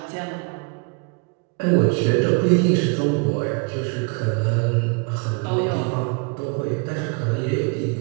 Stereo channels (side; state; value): left; quieter; 33.2 dB